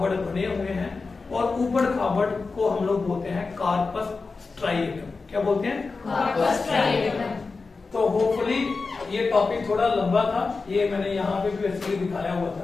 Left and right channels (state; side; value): quieter; right; 4.2 dB